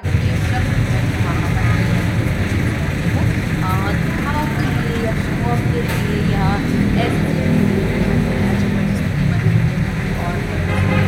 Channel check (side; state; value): both; identical; correlation 1.00